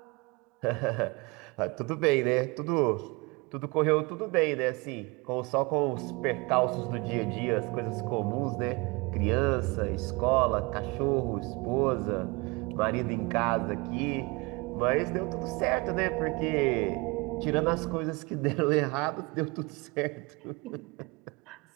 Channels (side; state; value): left; quieter; 26.6 dB